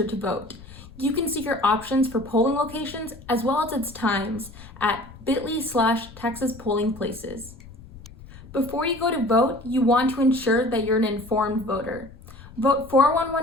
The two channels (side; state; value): left; noise; rumble, 19 dB below the sound